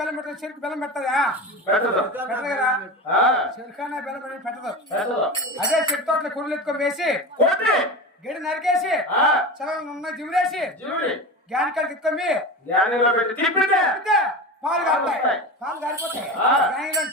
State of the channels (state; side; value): normal; both; correlation 0.26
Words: పెట్టదు. చెరుకు బెల్లం పెట్టదా? పెట్టదు కదా. చెరుకానే బెల్లం పెట్టి పెట్టదు. అదే చెట్టు తోటలో కొడులు ఎత్తుకొని వేసి గడి నరికేసి చల్ల జిమిరేసి గ్యాన్ కాడికి ఎత్తుకొని పాలు కారుతాయి. పాలు కారిపోతాయి.